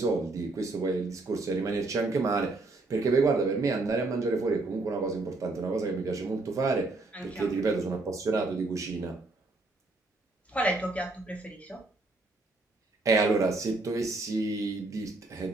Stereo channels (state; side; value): quieter; left; 3.2 dB